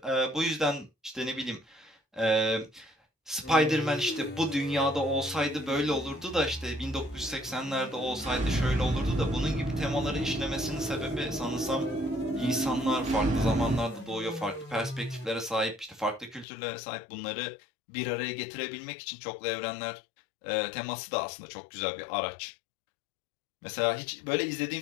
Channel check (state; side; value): drops out; right; at 16.4 s